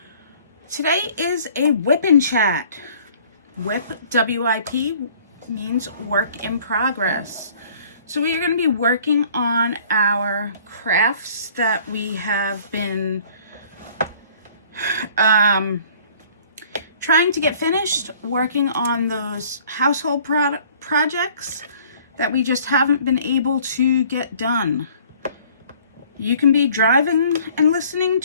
Today is a WIP N Chat. WIP, W-I-P, means work in progress. So we are going to be working on our crafts that we have been trying to get finished, working on those household projects that we just haven't been able to get done. You can be driving and listening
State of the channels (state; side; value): inverted; both; correlation -0.54